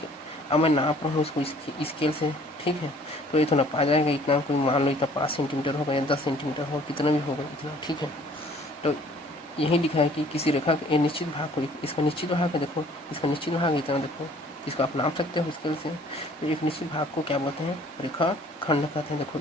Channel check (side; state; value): both; normal; correlation 0.55